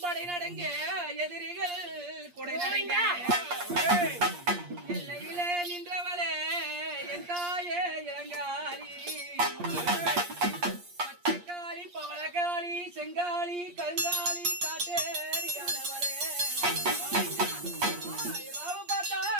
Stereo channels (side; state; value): left; late; 8.5 ms